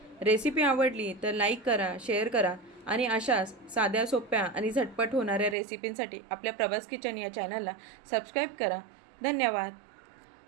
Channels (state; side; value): drops out; left; at 5.6 s